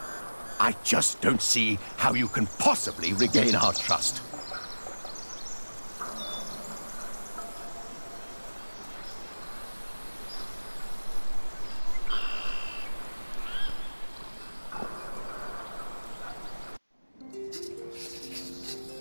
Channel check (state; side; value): inverted; both; correlation -1.00